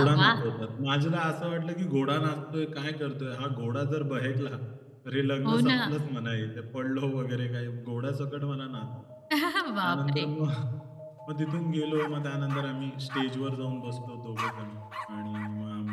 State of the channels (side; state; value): both; identical; correlation 1.00